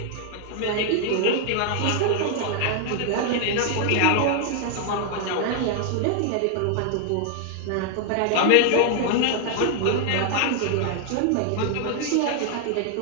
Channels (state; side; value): different; both; correlation 0.00